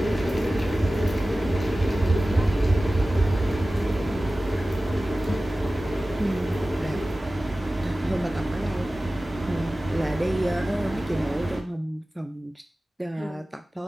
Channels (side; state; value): both; normal; correlation 0.96